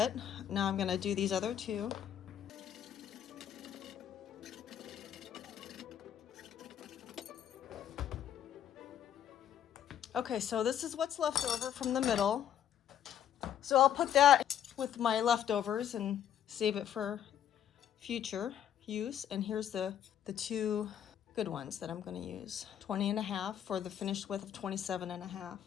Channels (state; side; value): quieter; right; 10.0 dB